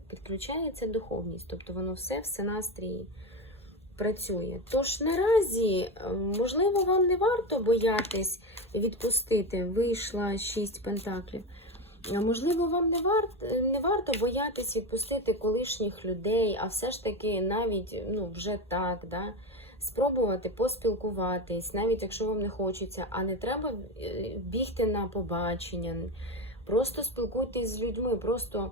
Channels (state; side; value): normal; both; correlation 0.18